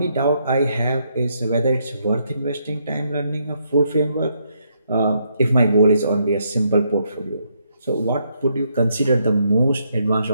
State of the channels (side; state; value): both; inverted; correlation -0.76